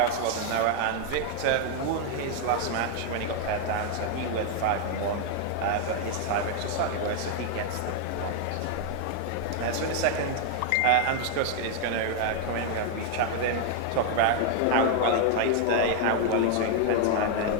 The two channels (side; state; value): both; different; correlation 0.00